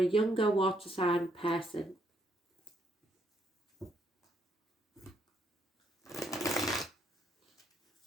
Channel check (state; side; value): normal; both; correlation 0.73